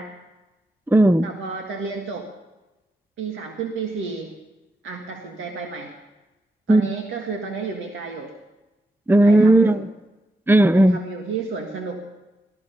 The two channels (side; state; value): both; normal; correlation 0.86